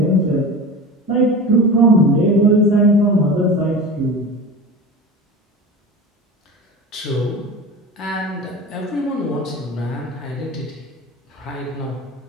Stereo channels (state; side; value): normal; both; correlation 0.31